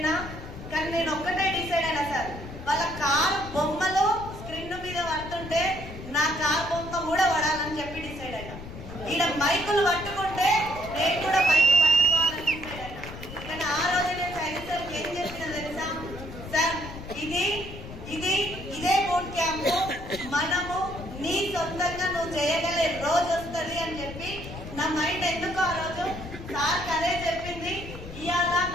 కానీ నేను ఒక్కటే డిసైడ్ అయినా సార్, వాళ్ళ కార్ బొమ్మలు స్క్రీన్ మీద పడుతుంటే నా కార్ బొమ్మ కూడా పడాలని చెప్పి డిసైడ్ అయినా. ఈడ మైకులు పట్టుకుంటే నేను కూడా మైకు పట్టుకోవాలని డిసైడ్ అయినా. కానీ ఆ రోజు నేను సైకిల్ సార్కి ఏం చెప్పినా తెలుసా సార్, ఇదే బూట్ క్యాంప్ మనము నీ సొంతంగా నువ్వు చేయగలే రోజు వస్తుంది అని చెప్పి నా మైండ్ ఎందుకు ఆ రోజు సార్కి అదే చెప్పింది. ఇవాళ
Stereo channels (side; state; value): left; noise; rumble, 12 dB below the sound